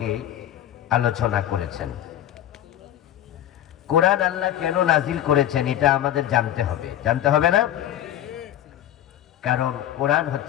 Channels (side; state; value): right; quieter; 11.9 dB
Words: আলোচনা করেছেন। কোরআন আল্লাহ কেন নাজিল করেছেন এটা আমাদের জানতে হবে না? কারণ কোরআন